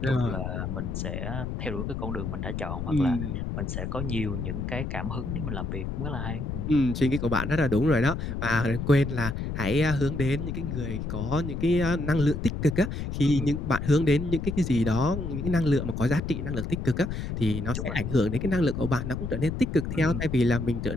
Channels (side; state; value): left; noise; rumble, 4 dB below the sound